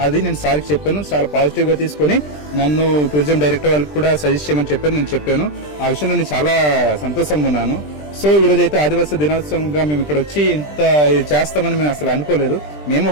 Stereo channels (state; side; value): late; right; 20 ms